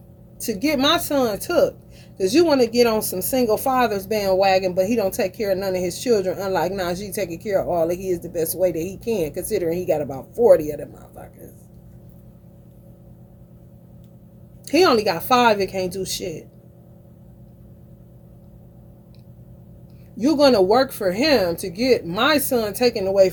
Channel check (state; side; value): identical; both; correlation 1.00